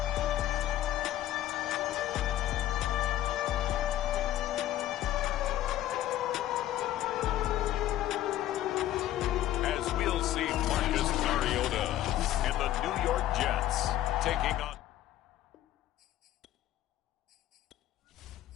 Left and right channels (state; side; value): quieter; right; 13.4 dB